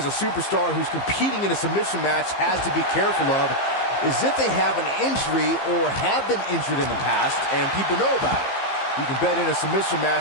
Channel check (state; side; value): late; right; 15 ms